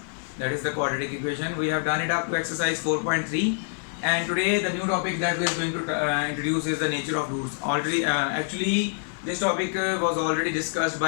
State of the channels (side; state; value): right; silent; 61 dB below the other